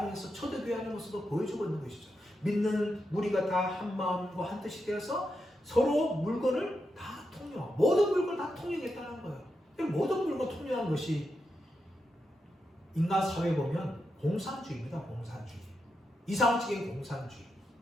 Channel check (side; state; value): both; normal; correlation 0.86